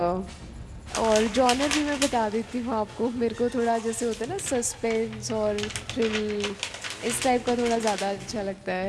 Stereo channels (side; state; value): both; identical; correlation 1.00